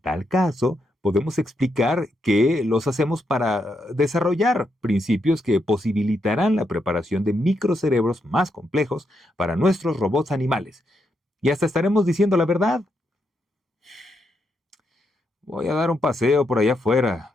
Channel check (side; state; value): both; normal; correlation 0.81